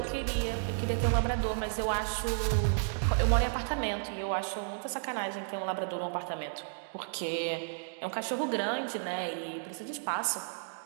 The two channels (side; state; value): left; silent; digital silence